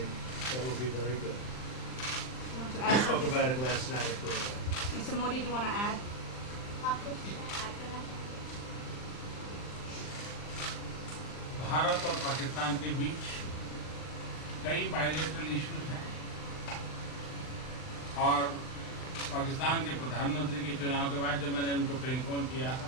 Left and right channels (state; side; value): late; right; 39 ms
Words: that will be very good. You want to We add spoke something? about it last night at Korea. Mr. Modi, do you want to add? Bharat और पाकिस्तान के बीच कई bilateral issues हैं और पाकिस्तान के प्रधानमंत्री के चुनाव के बाद जब मैंने उनको टेलीफोन किया